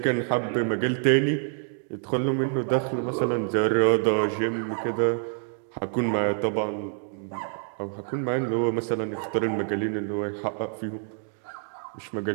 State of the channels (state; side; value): silent; left; 57 dB below the other